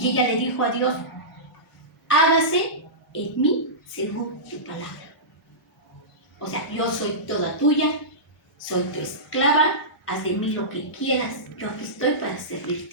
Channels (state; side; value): normal; both; correlation -0.18